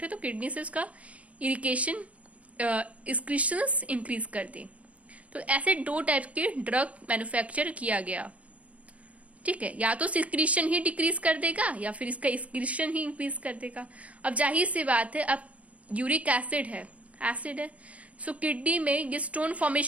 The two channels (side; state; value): left; late; 0.066 ms